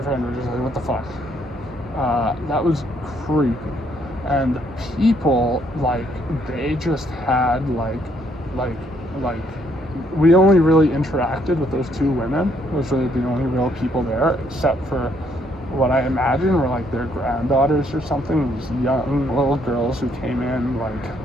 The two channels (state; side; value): normal; both; correlation 0.70